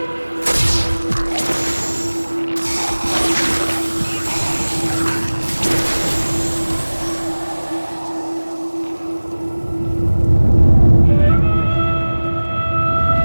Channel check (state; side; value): inverted; both; correlation -1.00